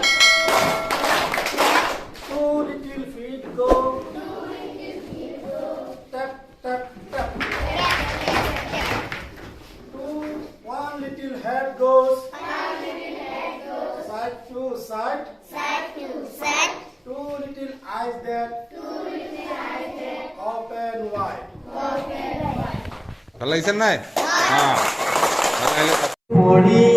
ভাল লাগিছে নাই?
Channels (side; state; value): both; identical; correlation 1.00